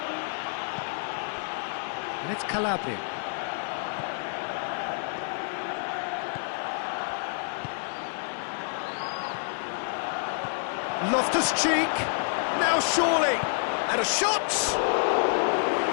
And it's Calabria. Loftus-Cheek, now surely, and a shot!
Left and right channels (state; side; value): silent; right; 59 dB below the other